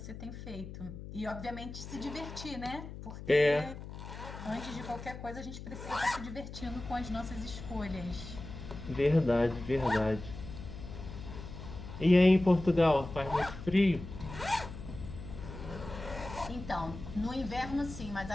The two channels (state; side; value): noise; left; hum, 11 dB below the sound